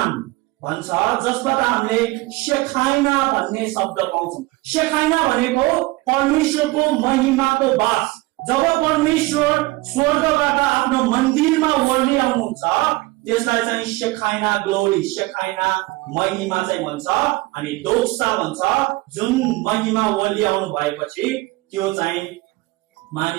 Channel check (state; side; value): quieter; left; 21.3 dB